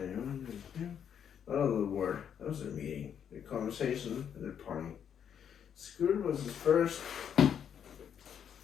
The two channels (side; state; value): right; quieter; 8.4 dB